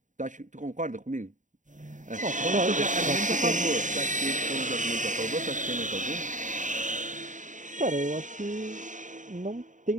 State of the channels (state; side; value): late; left; 0.36 ms